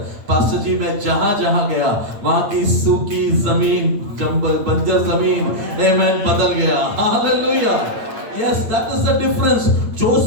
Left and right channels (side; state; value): left; late; 8.8 ms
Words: पास्टर जी मैं जहां जहां गया वहां की सूखी जमीन, बंजर जमीन, आमेन, बदल गया। Hallelujah, yes, that is the difference.